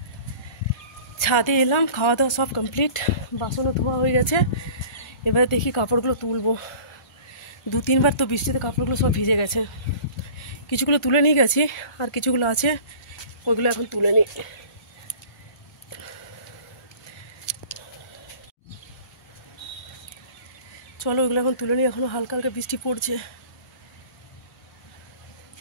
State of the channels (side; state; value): right; late; 1.4 ms